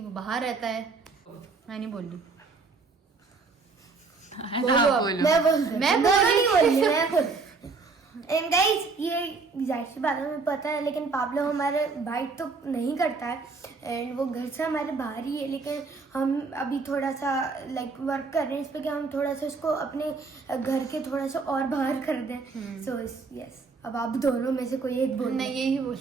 बाहर रहता है। मैं नहीं बोल रही। है ना, आप बोलो। मैं बोल मैं नहीं बोली, मैं बोल एंड गाइस ये जाहिर सी बात है, हमें पता है, लेकिन पाब्लो हमारे बाइट तो नहीं करता है एंड वो घर से हमारे बाहर ही है, लेकिन हम अभी थोड़ा सा लाइक वर्क कर रहे हैं इस पे कि हम थोड़ा सा उसको अपने घर के थोड़ा सा और बाहर कर दें. सो यस, अब आप दोनों में से कोई एक बोलना. नहीं, यही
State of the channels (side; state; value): left; quieter; 4.4 dB